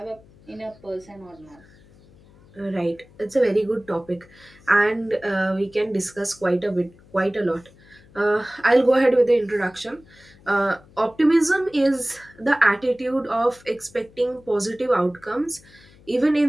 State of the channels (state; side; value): noise; left; hum, 26 dB below the sound